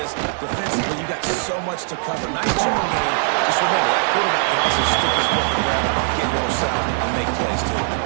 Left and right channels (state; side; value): silent; left; 59 dB below the other